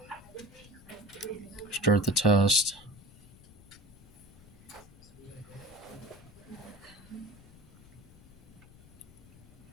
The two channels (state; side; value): noise; left; rumble, 22 dB below the sound